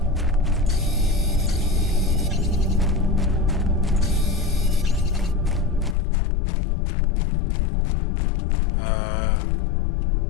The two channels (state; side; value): drops out; right; at 6.0 s